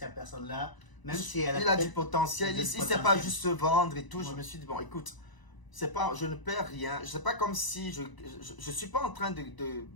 personne-là, même si elle il a du potentiel, il ne sait pas juste se vendre et tout. Ouais. Je me suis dit, bon, écoute, je ne perds rien. C'est pas comme si je suis pas en train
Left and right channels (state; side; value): late; right; 1.0 ms